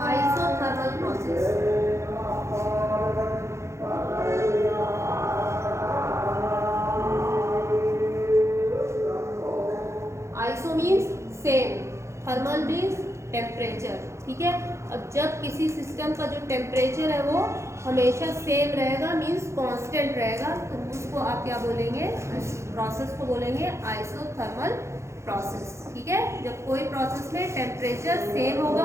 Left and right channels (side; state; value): left; late; 0.14 ms